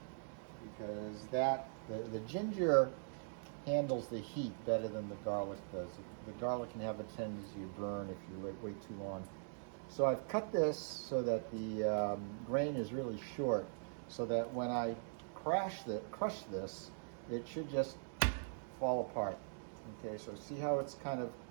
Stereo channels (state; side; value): silent; left; digital silence